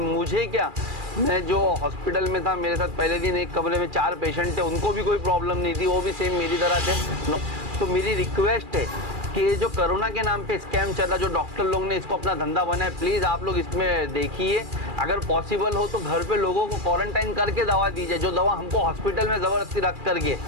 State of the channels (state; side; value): late; left; 2.4 ms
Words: क्या, मैं जो हॉस्पिटल में था, मेरे साथ पहले दिन एक कमरे में 4 पेशेंट थे, उनको भी कोई प्रॉब्लम नहीं थी, वो भी सेम मेरी तरह थे। तो मेरी रिक्वेस्ट है कि ये जो कोरोना के नाम पे स्कैम चल रहा, जो डॉक्टर लोग ने इसको अपना धंधा बनाया, प्लीज़ आप लोग इसमें देखिए। अगर पॉसिबल हो तो घर पे लोगों को क्वारंटाइन करके दवा दीजिए। जो दवा हमको हॉस्पिटल में ज़बरदस्ती रख करके